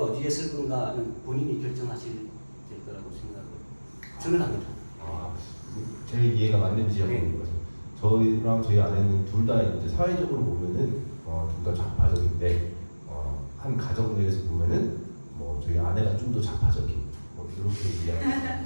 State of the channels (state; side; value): inverted; both; correlation -1.00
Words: 어디에 쓸 건가는 본인이 결정하실 될 거라고 저는 합니다. 제 이해가 맞는지 한번 네. 물어봐요. 저희랑 저희 아내는 둘 다 이제 사회적으로 보면은 둘 다 좌파적인데 한 가정 내에서 보면은 뭐 저희 아내가 좀 더 좌파적인 뭐 이렇게